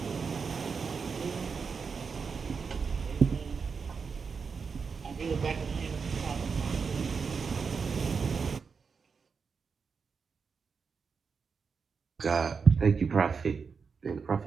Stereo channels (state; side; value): quieter; left; 5.5 dB